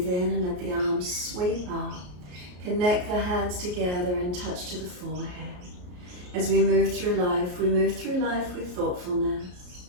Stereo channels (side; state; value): left; late; 33 ms